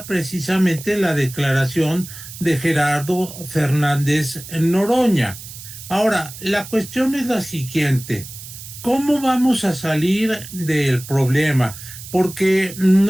precisamente la declaración de Gerardo Fernández Noroña. Ahora, la cuestión es la siguiente: ¿cómo vamos a salir del problema? Porque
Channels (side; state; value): right; noise; hiss, 14 dB below the sound